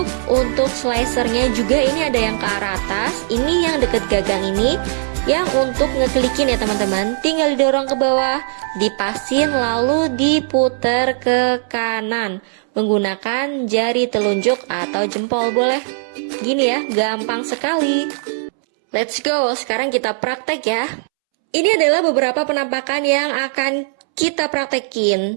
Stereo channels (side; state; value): left; silent; 67 dB below the other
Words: untuk slicernya juga, ini ada yang ke arah atas, ini yang deket gagang ini yang untuk ngeklikin ya teman-teman. Tinggal didorong ke bawah, dipasin lalu diputer ke kanan menggunakan jari telunjuk atau jempol boleh. Gini ya, gampang sekali. Let's go, sekarang kita praktek ya. Ini adalah beberapa penampakan yang akan kita